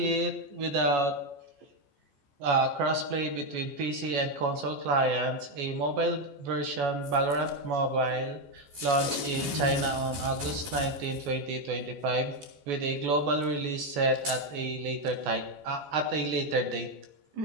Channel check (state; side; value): late; left; 14 ms